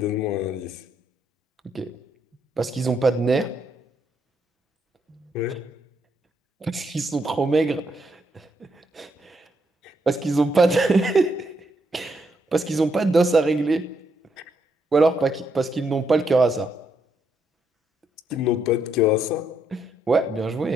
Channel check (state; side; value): normal; both; correlation 0.77